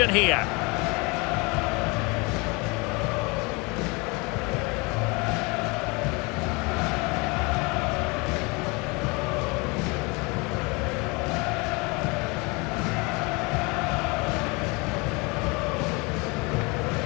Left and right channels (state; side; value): quieter; right; 27.8 dB